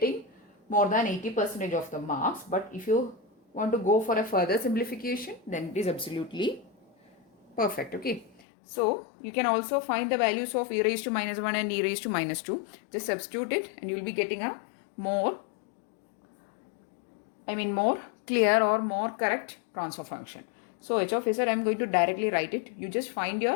more than 80% of the marks. But if you want to go for a further simplification, then it is absolutely perfect. Okay. So, you can also find the values of e raised to minus 1 and e raised to minus 2. Just substitute it and you will be getting a more clear or more correct transfer function. So, h of z, I am going to directly write it. You just find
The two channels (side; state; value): right; drops out; at 8.4 s